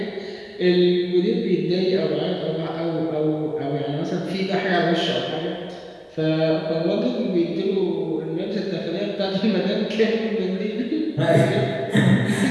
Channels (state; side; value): identical; both; correlation 1.00